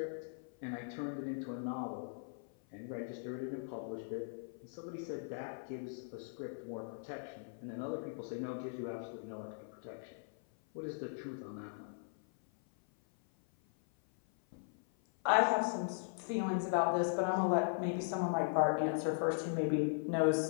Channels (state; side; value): silent; right; 52 dB below the other